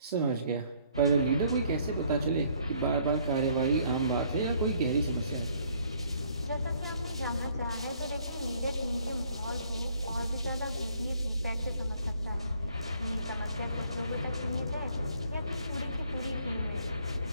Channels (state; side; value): inverted; both; correlation -0.63